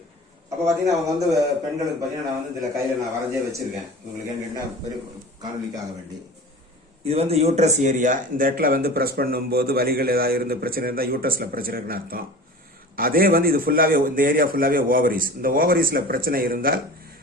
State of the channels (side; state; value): both; normal; correlation 0.37